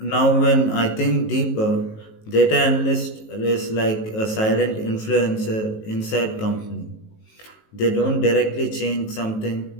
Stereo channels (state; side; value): late; right; 19 ms